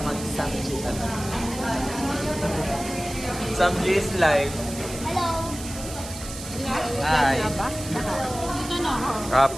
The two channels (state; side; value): noise; right; hiss, 12 dB below the sound